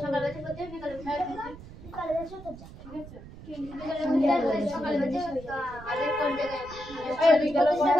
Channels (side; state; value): right; noise; rumble, 16 dB below the sound